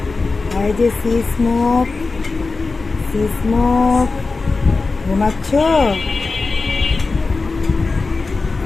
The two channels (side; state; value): right; quieter; 3.9 dB